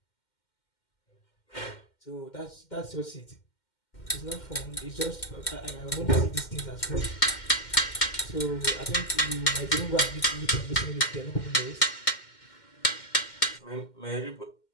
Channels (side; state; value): right; late; 2.1 ms